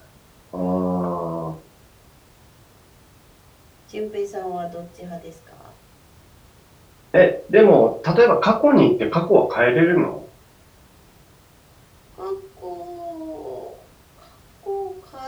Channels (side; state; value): both; identical; correlation 1.00